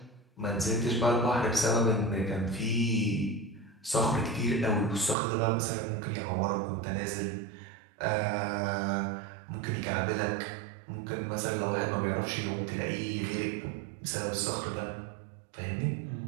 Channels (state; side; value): drops out; left; at 5.2 s